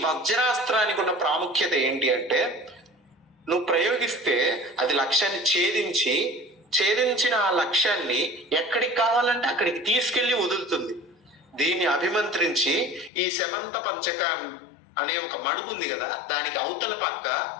వజ్రాస్త్రానికి ఉన్న ప్రాముఖ్యత ఏంటి అంటే, నువ్వు ప్రయోగిస్తే అది లక్ష్యాన్ని ఛేదించిన ఆ లక్ష్యాన్ని ఎక్కడికి కావాలంటే అక్కడికి తీసుకెళ్లి వదులుతుంది. దీన్ని అభిమంత్రించి ఈ శమంత పంచక అనే ఒక మడుగు ఉంది కదా, దానికి అవతల పక్క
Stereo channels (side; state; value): right; drops out; at 13.1 s